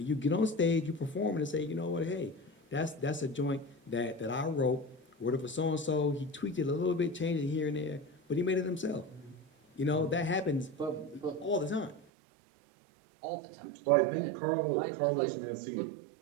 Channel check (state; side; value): drops out; left; at 12.0 s